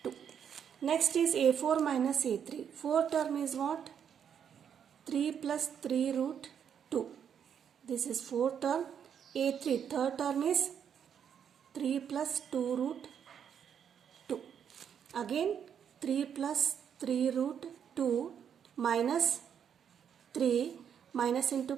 2. Next is a4 minus a3. Fourth term is what? 3 plus 3 root 2. This is fourth term. a3 third term is 3 plus 2 root 2. Again 3 plus 3 root 2 minus 3 minus into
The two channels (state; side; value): quieter; left; 8.2 dB